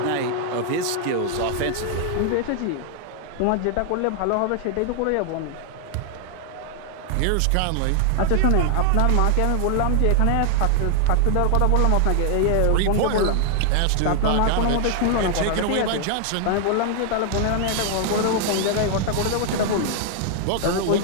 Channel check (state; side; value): different; both; correlation 0.00